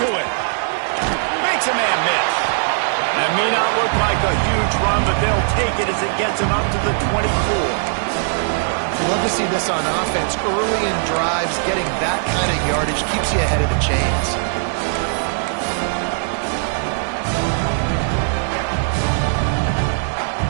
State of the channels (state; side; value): silent; left; digital silence